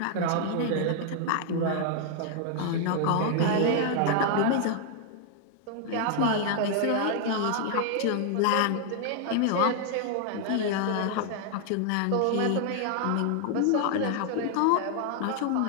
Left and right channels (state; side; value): different; both; correlation 0.00